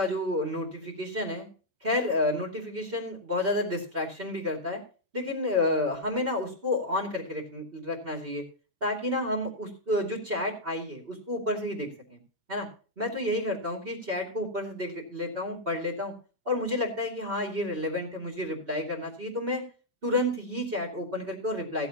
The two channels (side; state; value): both; normal; correlation -0.06